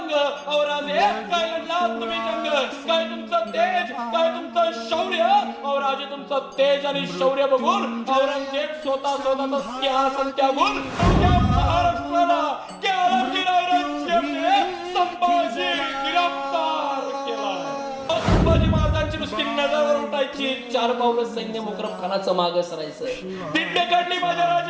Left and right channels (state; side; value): identical; both; correlation 1.00